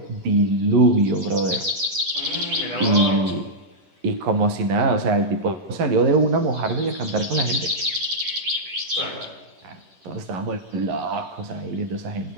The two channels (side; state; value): left; late; 11 ms